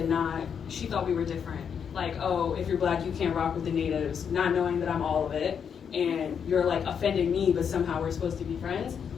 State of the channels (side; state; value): right; quieter; 7.3 dB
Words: not, she thought we were different. Like, oh, if you're black, you can't rock with the natives, not knowing that I'm all of it. And you're like offending me, but somehow we're supposed to be friends.